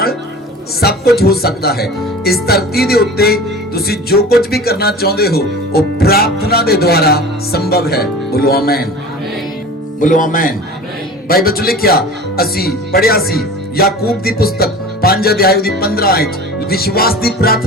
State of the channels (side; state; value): both; normal; correlation 0.38